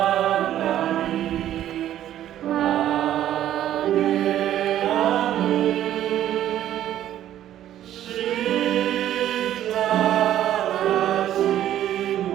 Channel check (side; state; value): left; quieter; 11.9 dB